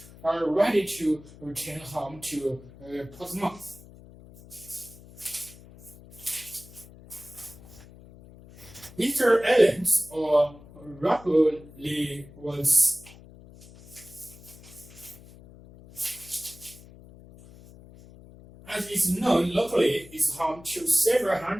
ready to return home to Portsmouth. Easter Islands, or Rapoli, was as is known locally, is home to several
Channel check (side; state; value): left; noise; hum, 20 dB below the sound